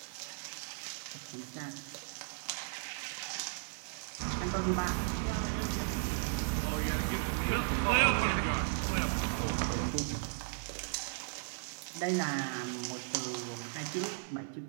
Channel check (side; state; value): left; silent; 54 dB below the other